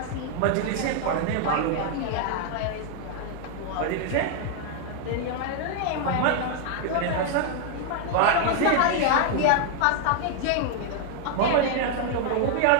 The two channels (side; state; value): both; different; correlation 0.00